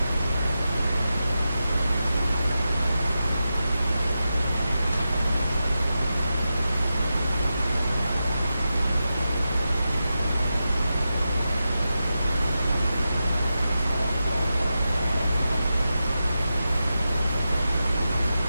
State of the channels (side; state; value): both; inverted; correlation -0.91